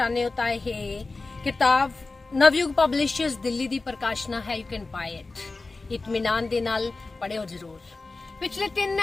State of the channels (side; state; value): right; quieter; 3.6 dB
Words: ਹੋ ਤਾਂ ਇਹ ਕਿਤਾਬ ਨਵਯੁਗ ਪਬਲਿਸ਼ਰਸ ਦਿੱਲੀ ਦੀ ਪ੍ਰਕਾਸ਼ਨਾ ਹੈ। You can buy it. ਇਤਮੀਨਾਨ ਦੇ ਨਾਲ ਪੜ੍ਹਿਓ ਜ਼ਰੂਰ। ਪਿਛਲੇ 3